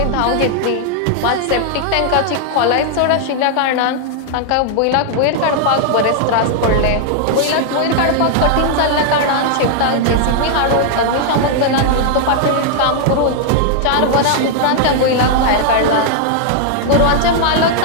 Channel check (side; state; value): both; different; correlation 0.00